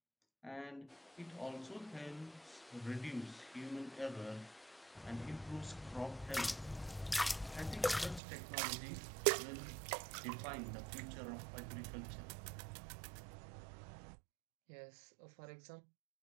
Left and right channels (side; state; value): left; drops out; at 8.2 s